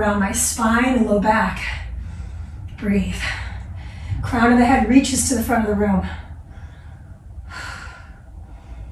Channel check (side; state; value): both; identical; correlation 1.00